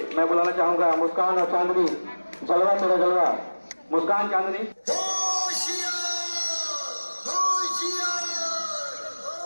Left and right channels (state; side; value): inverted; both; correlation -1.00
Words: मैं बुलाना चाहूंगा मुस्कान और चांदनी, जलवा तेरा जलवा। मुस्कान, चांदनी।